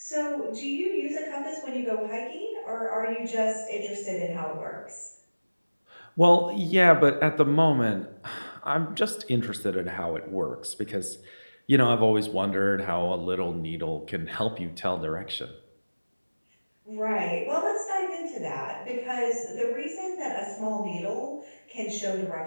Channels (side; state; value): both; inverted; correlation -1.00